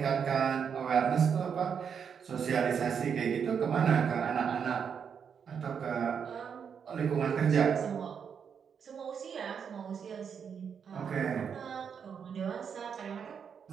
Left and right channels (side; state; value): left; quieter; 7.1 dB